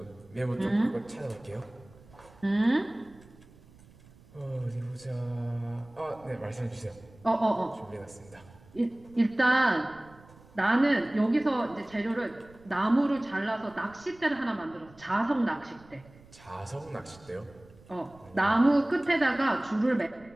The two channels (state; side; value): noise; right; rumble, 25 dB below the sound